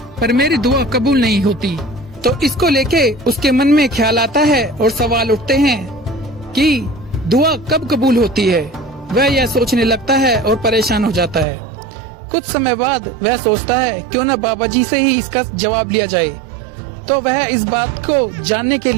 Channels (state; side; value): drops out; left; at 11.5 s